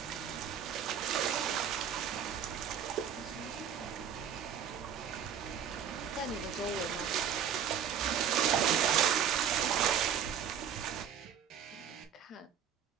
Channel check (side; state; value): left; quieter; 8.3 dB